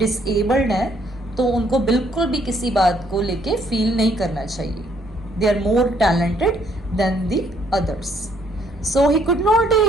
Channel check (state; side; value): normal; both; correlation 0.67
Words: हैं, तो उनको बिल्कुल भी किसी बात को लेके फील नहीं करना चाहिए। They are more talented than the others. So he could not